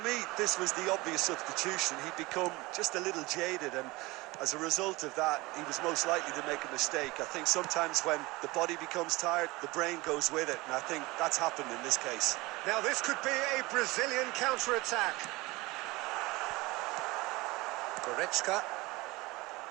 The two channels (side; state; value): left; quieter; 22.0 dB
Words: me, this was the obvious substitution. He'd become just a little jaded, and as a result of that, he was most likely to make a mistake. I think sometimes when the body becomes tired, the brain goes with it, and I think that's happened in this case. Now this could be a Brazilian counter-attack. Goretzka.